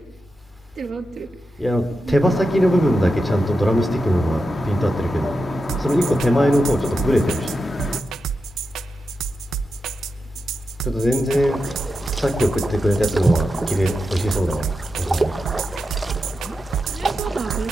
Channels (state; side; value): normal; both; correlation 0.89